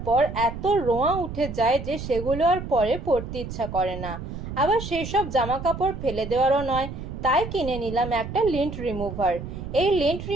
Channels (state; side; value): noise; right; rumble, 8 dB below the sound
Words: পর এত রোঁয়া উঠে যায় যে সেগুলো আর পরে পরতে ইচ্ছা করে না। আবার সেই সব জামা কাপড় ফেলে দেওয়ারও নয়, তাই কিনে নিলাম একটা লিন্ট রিমুভার। এই লিন্ট